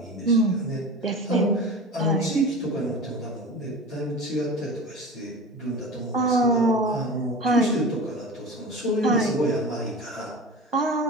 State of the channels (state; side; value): normal; both; correlation 0.33